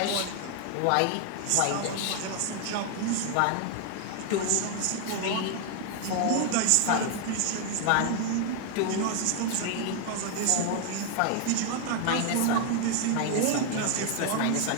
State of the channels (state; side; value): different; both; correlation 0.00